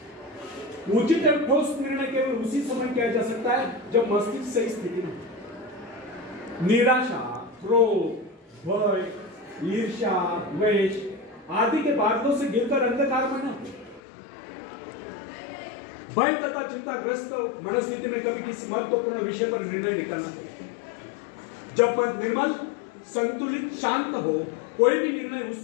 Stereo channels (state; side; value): drops out; right; at 14.0 s